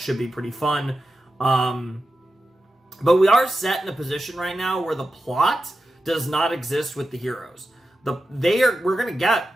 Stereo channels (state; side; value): normal; both; correlation 0.91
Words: be pretty fun. But we are set in a position right now where the plot does not exist with the heroes. We're going to get